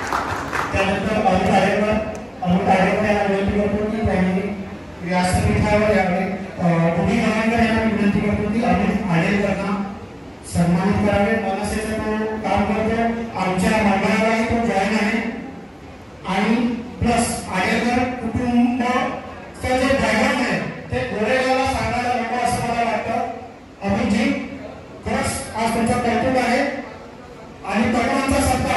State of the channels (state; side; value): identical; both; correlation 1.00